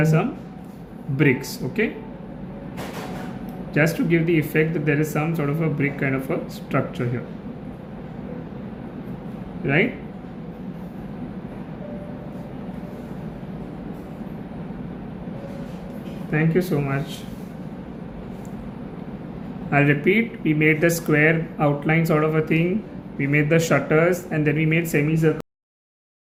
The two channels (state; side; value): identical; both; correlation 1.00